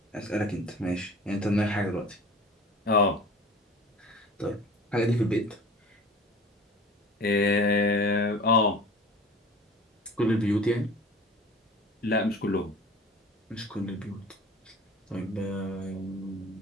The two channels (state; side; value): normal; both; correlation 0.42